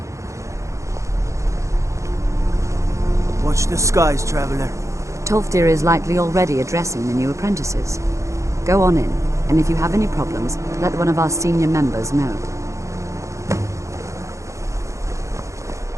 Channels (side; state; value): left; late; 0.15 ms